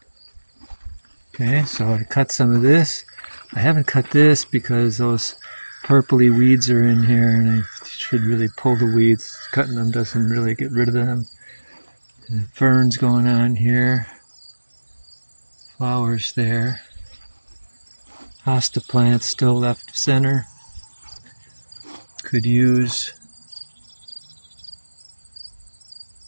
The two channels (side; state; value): both; inverted; correlation -1.00